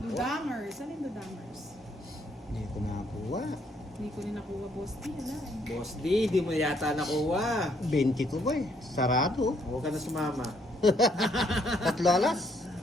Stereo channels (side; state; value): both; normal; correlation 0.69